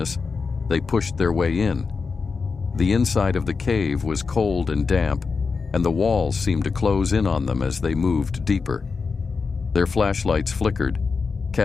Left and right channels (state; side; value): quieter; right; 4.9 dB